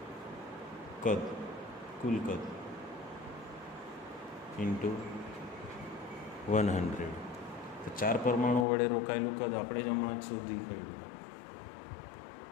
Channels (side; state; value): right; drops out; at 8.7 s